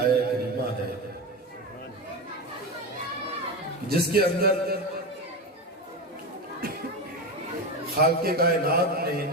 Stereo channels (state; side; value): normal; both; correlation 0.19